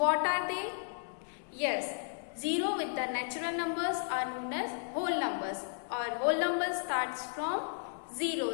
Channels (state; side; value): silent; right; digital silence